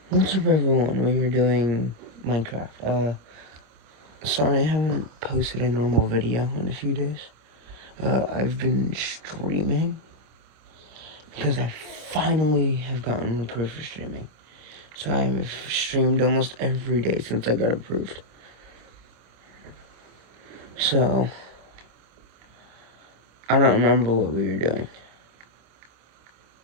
What's up, everyone? We were doing Minecraft. Sorry I haven't posted a normal video in a few days. I've been streaming because I finally have gotten approved for streaming. So I've streamed almost every day since I got approved. So, I don't remember what we were doing.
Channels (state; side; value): late; left; 26 ms